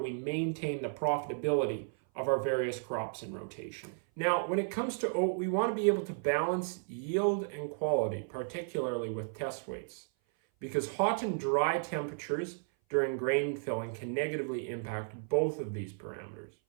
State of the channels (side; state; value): left; silent; 55 dB below the other